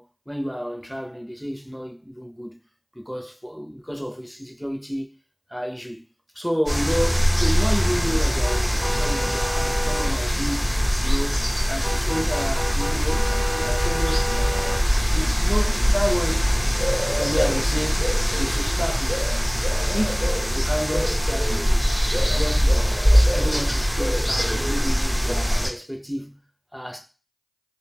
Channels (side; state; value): both; identical; correlation 1.00